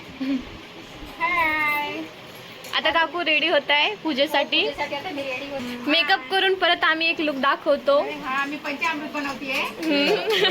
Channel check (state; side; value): identical; both; correlation 1.00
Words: आता काकू रेडी होत आहे पूजेसाठी. मेकअप करून परत आम्ही एक लुक दाखवतो. मी पंचामृत बनवतीये.